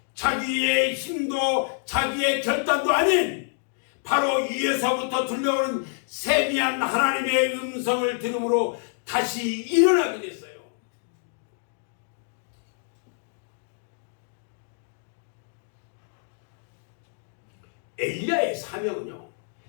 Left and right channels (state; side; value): silent; right; digital silence